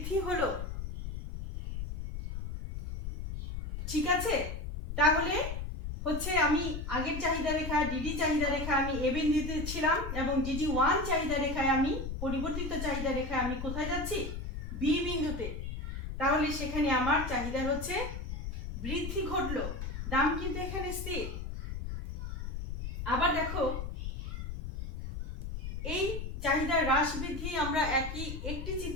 হলো। ঠিক আছে, তাহলে হচ্ছে আমি আগের চাহিদা রেখা ডিডি চাহিদা রেখা আমি এ বিন্দুতে ছিলাম, এবং DD1 চাহিদা রেখায় আমি পরিবর্তিত চাহিদা রেখায় আমি কোথায় যাচ্ছি, বি বিন্দুতে। তাহলে সেখানে আমার চাহিদা হচ্ছে বৃদ্ধি ঘটলো, দাম কিন্তু এখানে স্থির। আবার দেখো, এই চাহিদার হ্রাস বৃদ্ধি আমরা একটি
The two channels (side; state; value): left; noise; rumble, 6 dB below the sound